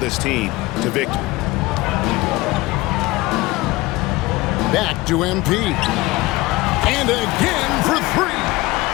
team to victory. Back to MP. And again for 3.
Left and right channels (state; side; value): quieter; right; 20.3 dB